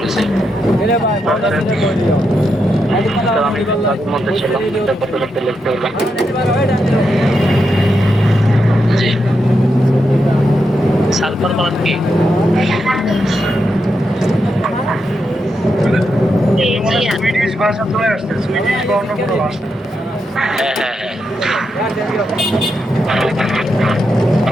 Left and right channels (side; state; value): both; normal; correlation 0.84